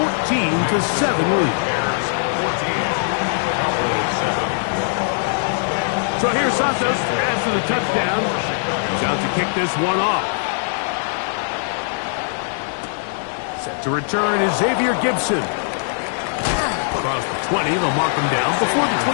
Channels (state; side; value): silent; right; digital silence